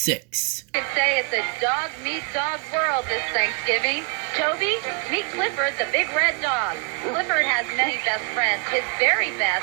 You could say it's a dog meet dog world this Thanksgiving. Toby, meet Clifford, the Big Red Dog. Clifford has many best friends. His very best,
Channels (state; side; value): quieter; left; 35.2 dB